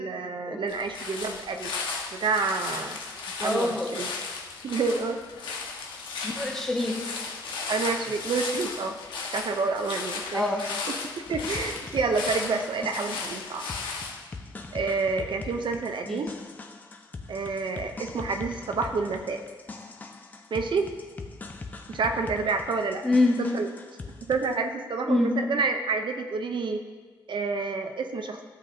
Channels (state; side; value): normal; both; correlation 0.49